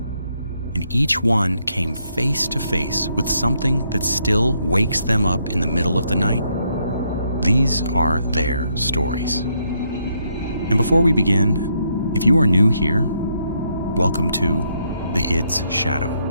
And each one came face to face with something that still wakes them up in the middle of the night. These are their stories. And before we begin, if you are new here, welcome to the ID's Shadow.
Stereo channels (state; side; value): inverted; both; correlation -0.75